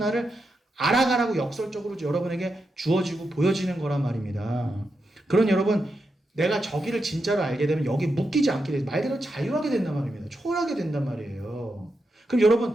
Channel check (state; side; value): normal; both; correlation 0.86